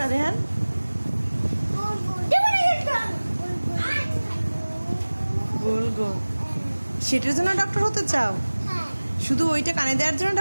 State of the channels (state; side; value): inverted; both; correlation -1.00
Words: রেহান? গোল গোল সেটার জন্য ডক্টর হতে চাও? শুধু ওইটা কানে দেওয়ার জন্য